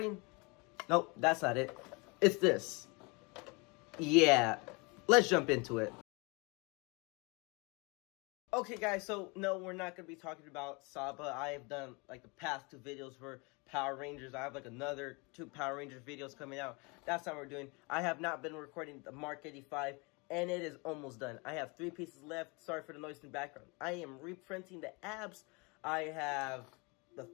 Nope, that's not it. It's this. Yeah, let's jump into it. Okay, guys, so no, we're not going to be talking about Saba. I have done, like, the past 2 videos for Power Rangers. I have, like, another 2 Power Rangers videos coming out. That's not what we're doing. I have not been recording the MK85, and it is almost done. I have 3 pieces left. Sorry for the noise in the background. I am reprinting the abs. I have the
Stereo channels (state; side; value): quieter; right; 28.9 dB